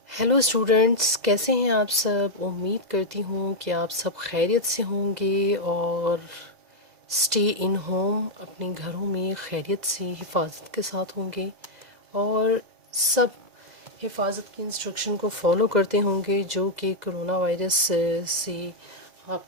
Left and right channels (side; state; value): left; late; 2.0 ms